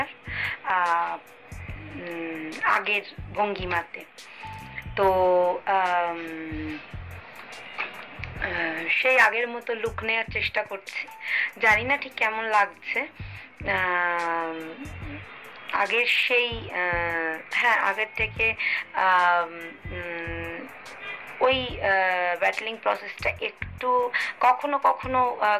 আগের ভঙ্গিমাতে। তো সেই আগের মতো লুক নেওয়ার চেষ্টা করছি। জানি না ঠিক কেমন লাগছে। আগের সেই আগের থেকে ওই ব্যাটলিং প্রসেসটা একটু কখনো কখনো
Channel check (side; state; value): both; identical; correlation 1.00